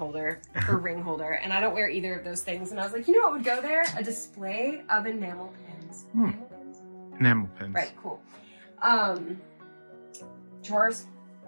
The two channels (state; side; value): inverted; both; correlation -1.00